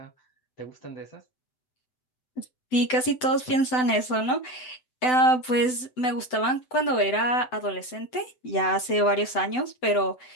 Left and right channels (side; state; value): right; late; 7.9 ms